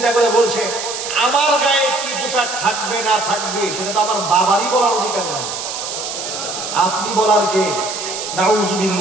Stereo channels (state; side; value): noise; right; hiss, 6 dB below the sound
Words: করে বলছে, আমার গায়ে কি পোশাক থাকবে না থাকবে সেটা তো আমার বাবারই বলার অধিকার নাই, আপনি বলার কে?